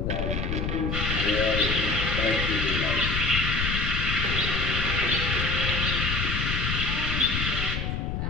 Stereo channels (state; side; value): noise; left; rumble, 1 dB below the sound